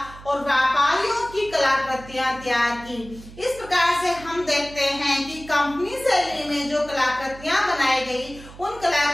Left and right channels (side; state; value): right; noise; hum, 18 dB below the sound